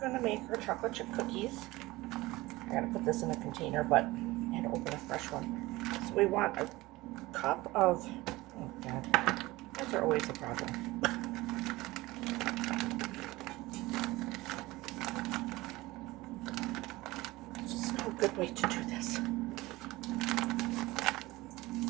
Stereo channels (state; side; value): quieter; left; 19.8 dB